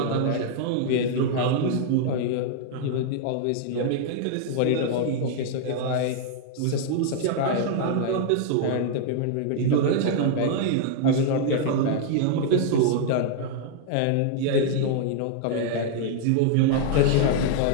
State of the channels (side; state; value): both; different; correlation 0.00